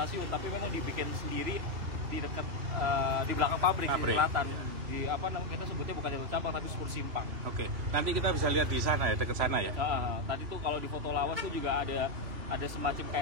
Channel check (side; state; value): left; late; 3.1 ms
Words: tapi memang dibikin sendiri di dekat di belakang pabrik. Di selatan. Di kita sebutnya bukan jalur cabang tapi sepur simpang. Oke. Nanti kita bisa lihat di sana ya, dekat sana ya. Tadi tuh kalau di foto lawas tuh juga ada semacam